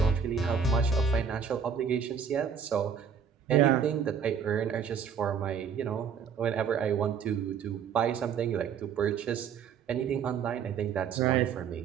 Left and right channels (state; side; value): quieter; left; 6.9 dB